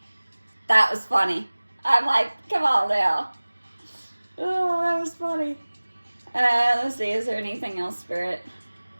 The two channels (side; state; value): both; inverted; correlation -1.00